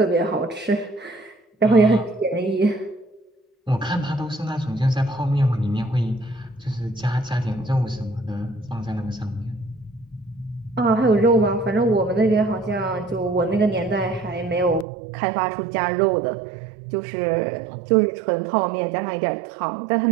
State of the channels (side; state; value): left; drops out; at 14.9 s